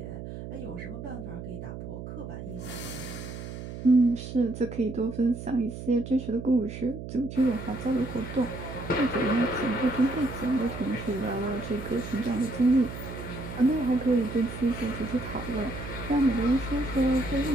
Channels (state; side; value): noise; right; hum, 9 dB below the sound